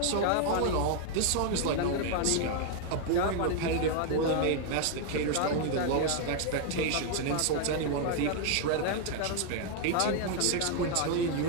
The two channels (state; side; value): different; both; correlation 0.00